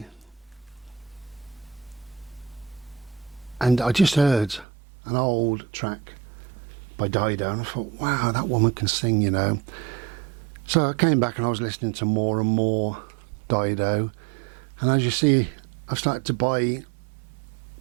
and I just heard an old track by Dido and I thought, wow, that woman can sing, you know. So I came back and I was listening to more and more Dido, and as you see, I've started to buy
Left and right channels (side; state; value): left; drops out; at 4.7 s